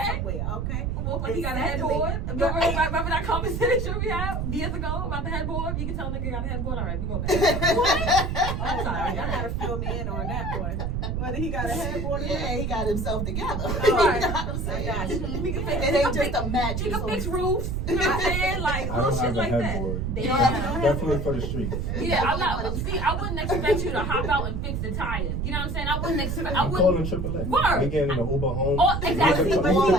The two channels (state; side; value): noise; right; rumble, 1 dB below the sound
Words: somewhere. Okay. Well, he got a headboard. Remember that conversation we had years ago about the headboard? You can tell a nigga got a headboard. All right, we go back. What? I'm sorry. Y'all gotta fill me in on that one. Whether he got a headboard or Yeah, he got himself together. Right. You know what I'm saying? I got you. We can fix It ain't just a match. You can fix roofs. You know what I'm saying? Like I little don't shit have a like headboard. that. Damn. Definitely for the streets. Yeah, I'm not. See, I wouldn't expect you to hop out and fix the tires. You know what I'm saying? I wouldn't expect. I I'm calling wouldn't. AAA. Word. We getting an Uber home. Oh, exactly. Leave the